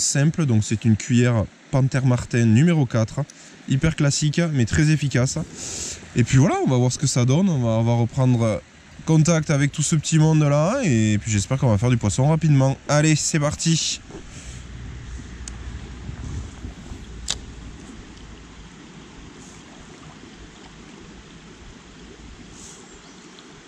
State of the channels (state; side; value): identical; both; correlation 1.00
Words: donc c'est une cuillère Panthère Martin numéro 4, hyper classique mais très efficace. Et puis voilà, on va voir ce que ça donne, on va reprendre contact avec tout ce petit monde là, et puis j'espère qu'on va faire du poisson rapidement. Allez, c'est parti!